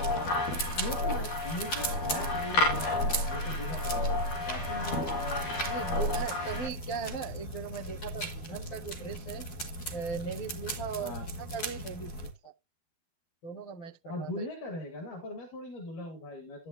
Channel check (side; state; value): right; late; 12 ms